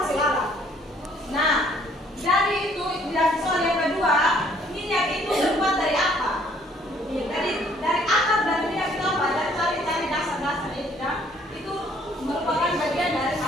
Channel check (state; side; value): normal; both; correlation 0.62